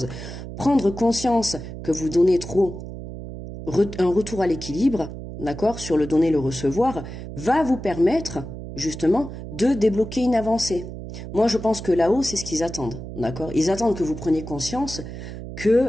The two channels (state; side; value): noise; right; hum, 10 dB below the sound